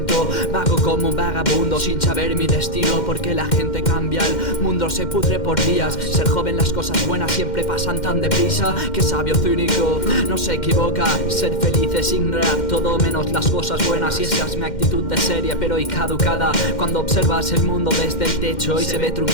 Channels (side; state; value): right; late; 2.1 ms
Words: Vago como un vagabundo sin saber mi destino, porque la gente cambia, el mundo se pudre por días. Ser joven, las cosas buenas siempre pasan tan deprisa. Que sabio cínico, no se equivoca. Ser feliz es ignorar todo menos las cosas buenas. Y esa es mi actitud de seria pero y caducada. Cuando observas el mundo desde el techo y se ve